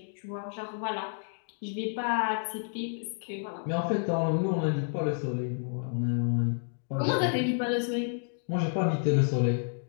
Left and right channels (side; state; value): right; silent; digital silence